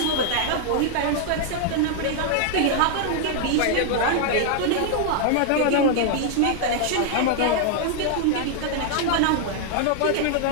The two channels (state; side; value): different; both; correlation 0.00